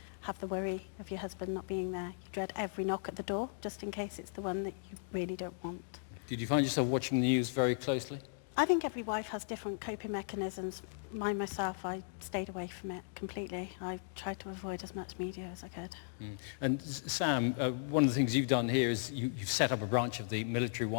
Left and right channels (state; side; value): silent; right; digital silence